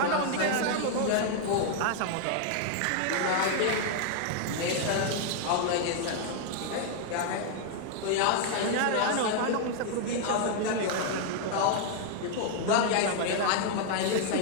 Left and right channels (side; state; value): both; different; correlation 0.00